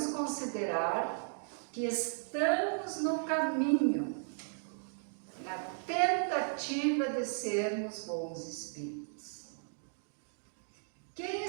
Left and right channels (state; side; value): silent; left; digital silence